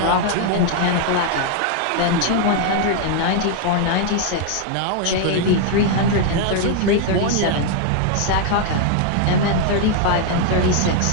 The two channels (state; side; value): different; both; correlation 0.00